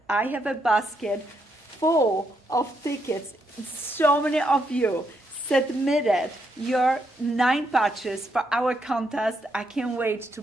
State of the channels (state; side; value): normal; both; correlation 0.78